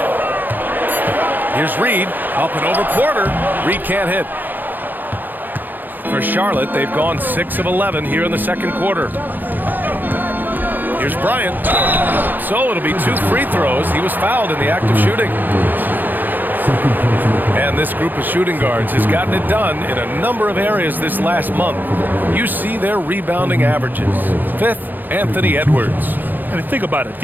Here's Reed, up and over Porter. Reed can't hit. For Charlotte, they've gone 6 of 11 here in the second quarter. Here's Bryant. So it'll be 2 free throws. He was fouled in the act of shooting. And this group of shooting guards has gotten it done in a number of areas this last month. You see their rebounding averages. 5th, Anthony Edwards. And think about it.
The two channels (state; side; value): late; left; 0.088 ms